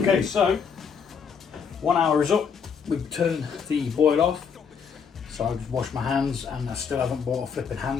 so 1 hour is up. We've turned the boil off. So I've just washed my hands and I still haven't brought a flipping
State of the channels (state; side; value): quieter; right; 6.5 dB